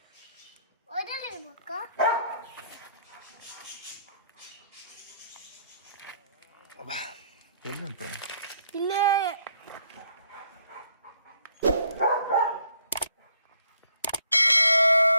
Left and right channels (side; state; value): both; inverted; correlation -0.67